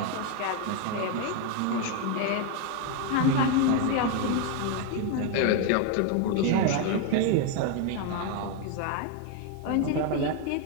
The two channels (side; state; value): both; different; correlation 0.01